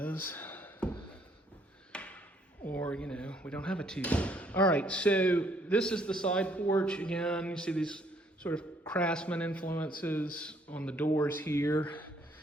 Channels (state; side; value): normal; both; correlation 0.66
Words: Or, you know, we don't have a TV. All right, so this is the side porch. Again, you see these sort of craftsman influences on the doors here.